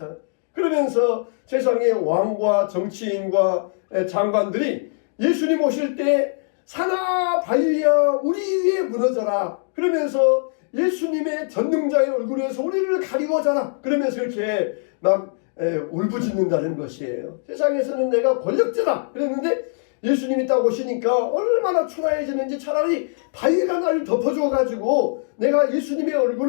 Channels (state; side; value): silent; right; digital silence